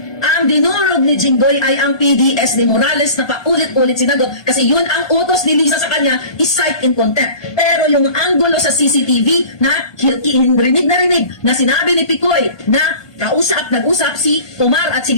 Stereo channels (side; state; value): right; late; 1.2 ms